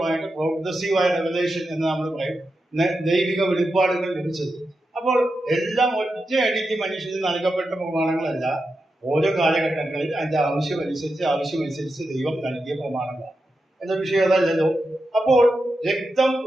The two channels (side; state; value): both; normal; correlation 0.89